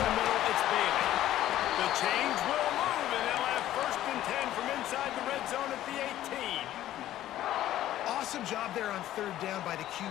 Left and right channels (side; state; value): right; quieter; 13.3 dB